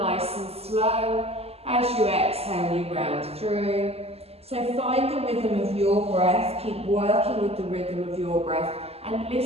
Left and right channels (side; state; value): left; late; 0.29 ms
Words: and slow. As you exhale, you round through. So find the rhythm of your breath, keep working with the rhythm of your breath and